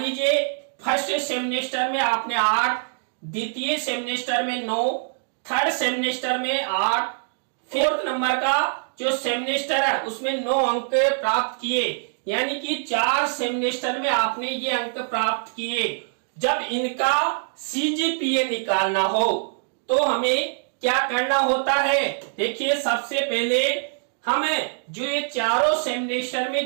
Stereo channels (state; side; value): silent; left; digital silence